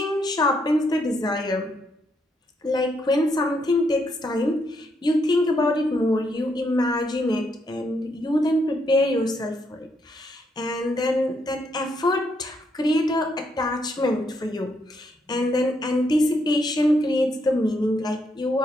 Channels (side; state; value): both; normal; correlation 0.76